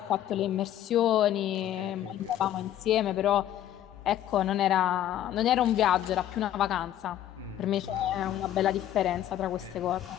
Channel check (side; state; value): right; quieter; 11.9 dB